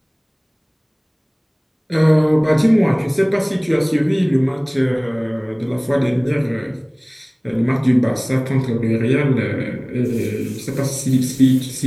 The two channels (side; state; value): both; identical; correlation 1.00